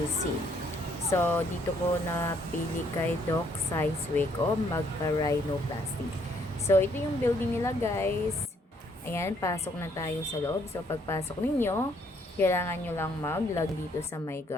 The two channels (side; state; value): both; normal; correlation 0.68